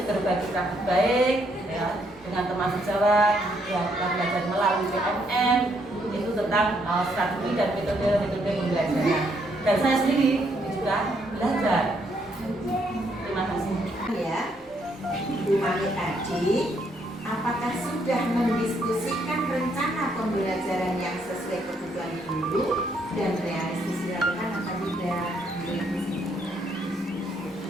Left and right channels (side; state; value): right; noise; rumble, 30 dB below the sound